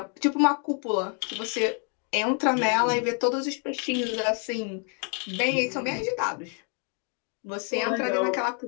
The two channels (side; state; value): right; quieter; 39.5 dB